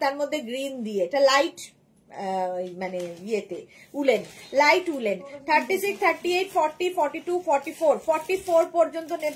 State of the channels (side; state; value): both; identical; correlation 1.00